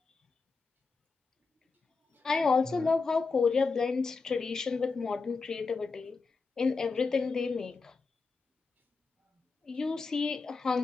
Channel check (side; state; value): right; quieter; 4.4 dB